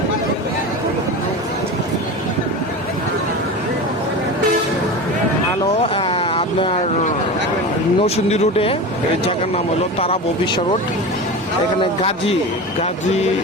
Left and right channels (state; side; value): normal; both; correlation 0.28